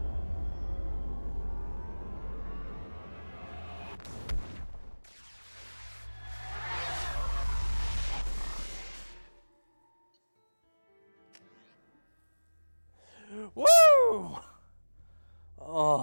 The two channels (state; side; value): inverted; both; correlation -1.00